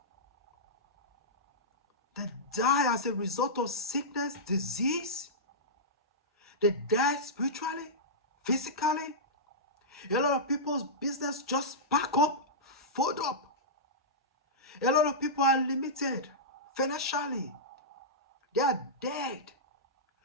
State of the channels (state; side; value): normal; both; correlation -0.14